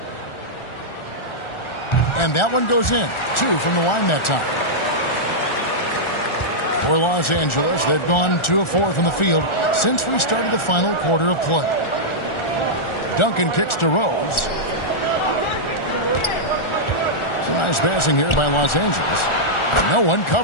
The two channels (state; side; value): late; right; 1.4 ms